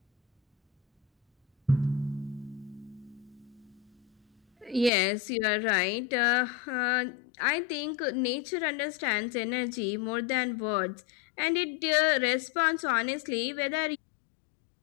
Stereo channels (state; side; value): drops out; right; at 4.9 s